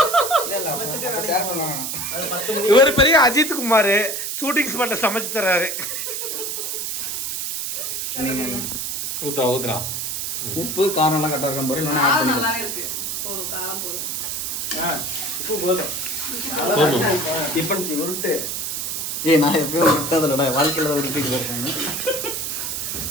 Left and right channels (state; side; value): noise; right; hiss, 3 dB below the sound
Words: ஷேர் பண்ணுவாங்க. இவர் பெரிய அஜித் குமார் ஷூட்டிங் ஸ்பாட்ல சமைச்சு தர்றாரு. ஊத்துறா ஊத்துறா. உப்பு காரம் எல்லாம் கரெக்டாக இருக்கும். இல்லைன்னா ஆட் காரம் பண்ணிக்கலாம். நல்லாவே இருக்கு. போதும், காரம் போதும். உப்பு போதும். டிஃபன் உருட்டு. நான் எப்பயும் விட்டதில்லடா, வாழ்க்கையில் தான் உருட்டிட்டு இருக்காங்க.